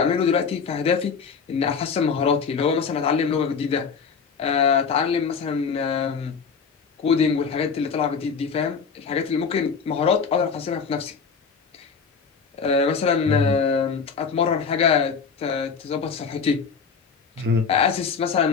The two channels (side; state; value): right; quieter; 5.7 dB